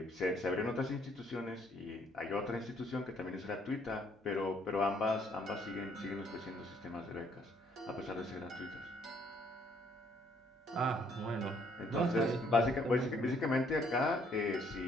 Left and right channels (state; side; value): normal; both; correlation 0.66